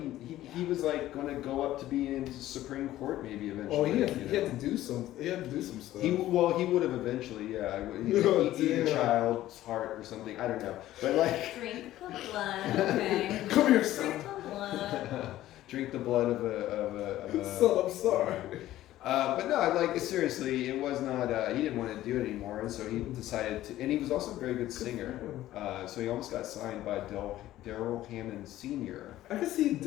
was like going to go up to be in the Supreme Court maybe eventually. Oh, he had to do some. He had to do some stuff. He would have eventually. Yeah, he eat a child's heart or something. I don't know, but like drink the blood. Okay. Come here, Drink son. the blood. Drink the blood of a. Son, I'm sorry. But no, like seriously, it was not. He didn't want to do it anymore, and so he decided to. And he was also a very good singer, so he almost got signed by Daryl Hammond Sr. I can see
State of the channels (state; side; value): quieter; right; 14.4 dB